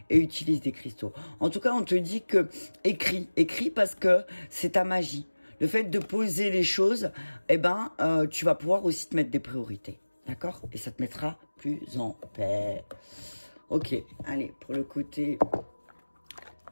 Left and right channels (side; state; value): both; inverted; correlation -1.00